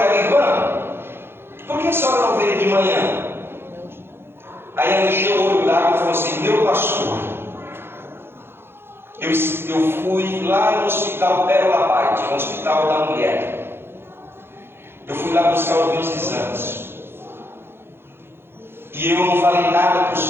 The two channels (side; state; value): left; late; 0.11 ms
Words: ela, irmã, por que a senhora não veio de manhã? Aí ela encheu o olho d'água e falou assim, meu pastor, eu fui lá no hospital Pérola Paz, no hospital da mulher. Eu fui lá buscar os meus exames. E eu não falei nada para o